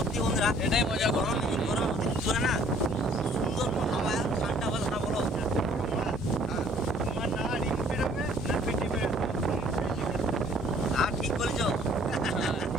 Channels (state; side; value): normal; both; correlation 0.58